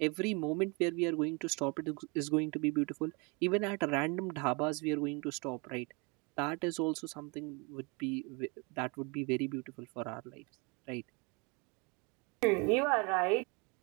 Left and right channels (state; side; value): quieter; left; 30.5 dB